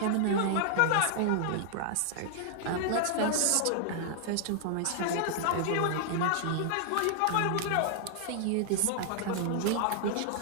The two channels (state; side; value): different; both; correlation 0.00